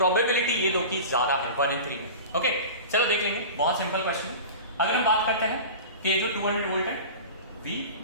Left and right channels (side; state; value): both; inverted; correlation -0.33